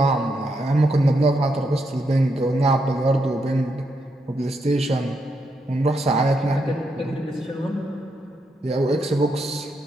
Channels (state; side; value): normal; both; correlation 0.81